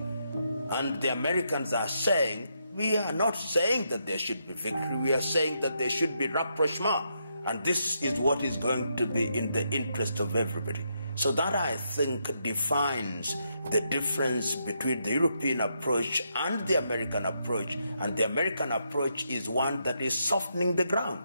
And the Americans are saying, we are not saying that there should be victory, we are saying that there should be rapprochement. And this is what is going to be in the interest of everybody. So that, I think, defines the difference between the European approach and the American approach. And the American approach is one that is softening the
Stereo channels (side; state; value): both; inverted; correlation -0.79